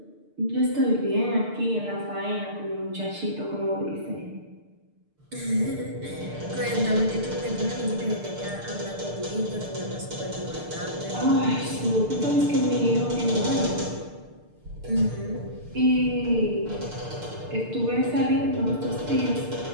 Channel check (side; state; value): left; late; 6.7 ms